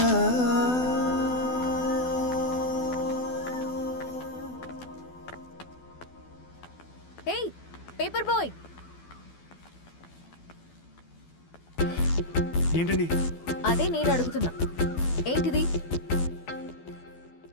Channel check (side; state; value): right; late; 12 ms